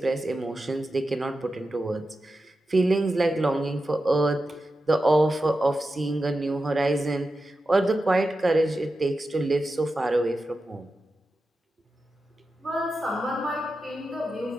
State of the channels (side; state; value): both; normal; correlation 0.91